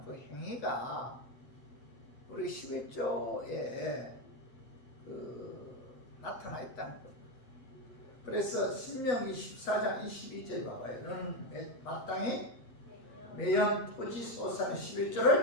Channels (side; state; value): right; late; 8.2 ms